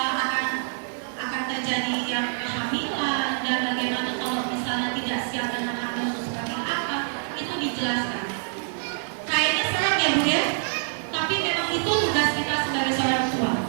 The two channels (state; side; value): silent; left; digital silence